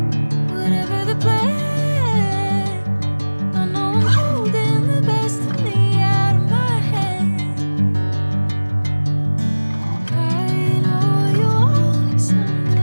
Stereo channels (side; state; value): both; inverted; correlation -1.00